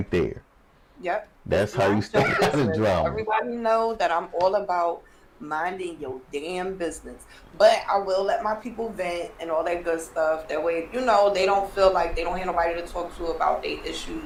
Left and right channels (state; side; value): identical; both; correlation 1.00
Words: there. Yep. That's Just how you mind stay your out of business. drama. Everybody know that I'm all about minding your damn business. But I will let my people vent and all that good stuff. That way, they don't feel like they don't have nobody to talk to about their issues